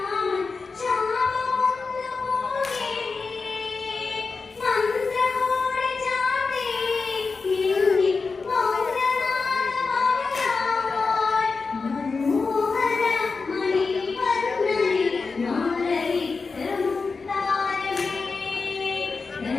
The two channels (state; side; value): quieter; right; 4.4 dB